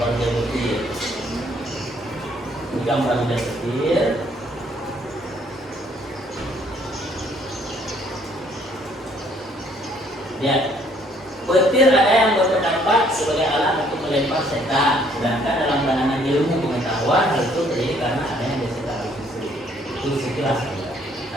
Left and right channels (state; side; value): normal; both; correlation 0.63